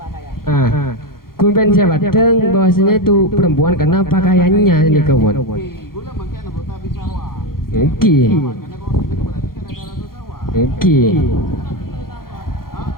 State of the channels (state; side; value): late; right; 0.92 ms